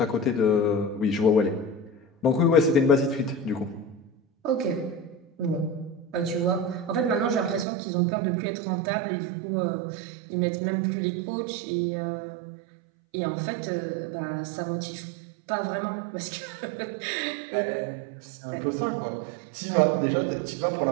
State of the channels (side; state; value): left; drops out; at 7.7 s